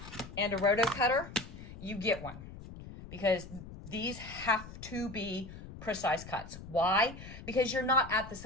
and a roto cutter, you get one, because these have to be precise cuts. Why? Because you're not at the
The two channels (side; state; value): left; noise; rumble, 13 dB below the sound